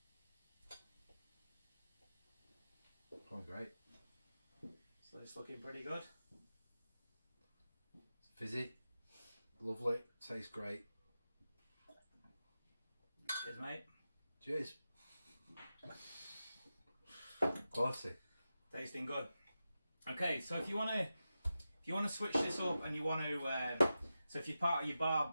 Oh, great. So it's looking pretty good. Fizzy, lovely, tastes great. Cheers, mate. Cheers. Quality. Tasting good. Okay, so if you want to switch this up and you want to, so if you're part of your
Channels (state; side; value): inverted; both; correlation -0.91